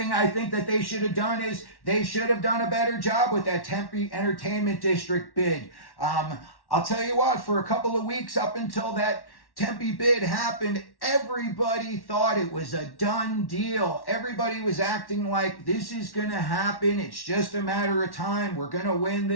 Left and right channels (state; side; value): late; right; 1.1 ms